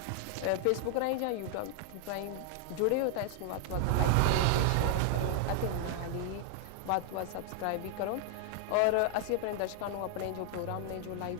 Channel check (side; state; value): both; different; correlation 0.00